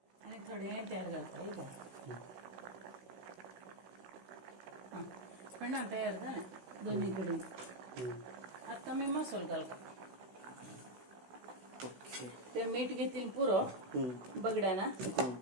आनी थोडी तयार घालता इथं पिंडा तयार जालें दोन्ही कडेन आतां मी मसालो घालता ओके ते मीठ घेतील पुरो बगड्याना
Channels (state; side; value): late; left; 16 ms